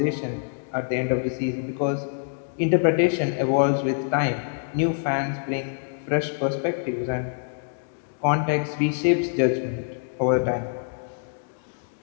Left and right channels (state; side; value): silent; right; digital silence